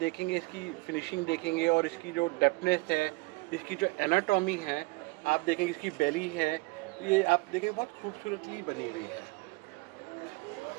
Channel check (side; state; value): left; quieter; 25.2 dB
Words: इसकी फिनिशिंग देखेंगे और इसकी जो डेप्थनेस है, इसकी जो एनाटॉमी है, आप देखेंगे इसकी बेली है, ये आप देखेंगे बहुत खूबसूरतली बनी हुई है।